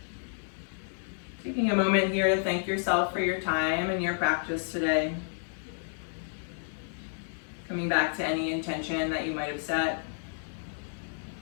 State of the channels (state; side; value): silent; right; 57 dB below the other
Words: Taking a moment here to thank yourself for your time and your practice today. Coming back to any intention that you might have set.